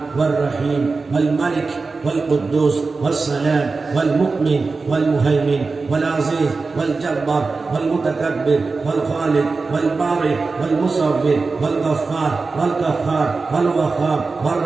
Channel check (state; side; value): quieter; left; 4.1 dB